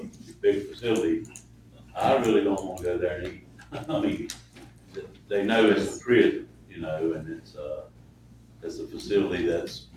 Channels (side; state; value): both; identical; correlation 1.00